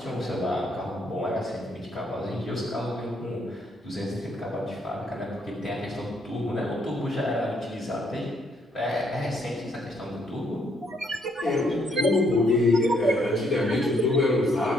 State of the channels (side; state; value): both; normal; correlation 0.71